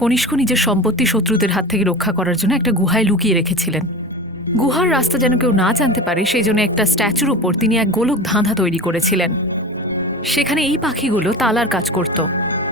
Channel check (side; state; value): both; normal; correlation 0.30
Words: কনিষ্ক নিজের সম্পত্তি শত্রুদের হাত থেকে রক্ষা করার জন্য একটা গুহায় লুকিয়ে রেখেছিলেন। গুহার রাস্তা যেন কেউ না জানতে পারে সেই জন্য একটা স্ট্যাচুর ওপর তিনি এক গোলক ধাঁধা তৈরি করেছিলেন। সেখানে এই পাখিগুলো তালার কাজ করত।